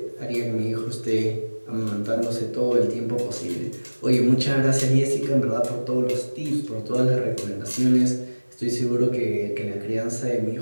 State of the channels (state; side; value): inverted; both; correlation -1.00